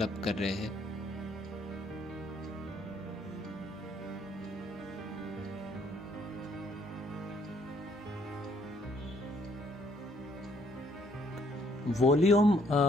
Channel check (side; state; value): both; normal; correlation 0.66